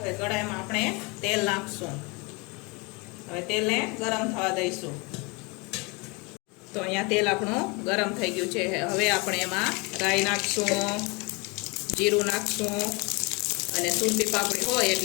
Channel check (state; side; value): quieter; right; 28.2 dB